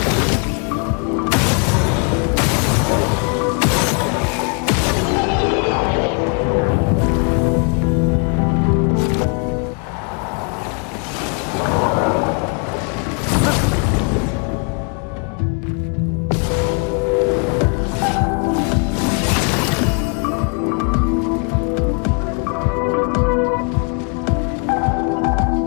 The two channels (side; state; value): right; quieter; 37.4 dB